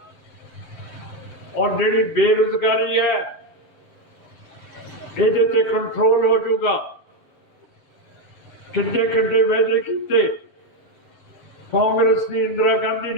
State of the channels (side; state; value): right; late; 7.2 ms